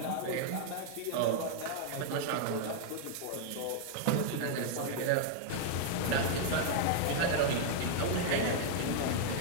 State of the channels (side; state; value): both; different; correlation -0.01